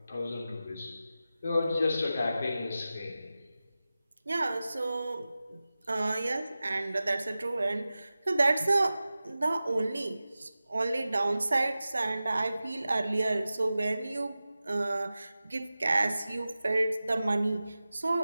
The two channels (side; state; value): both; inverted; correlation -0.95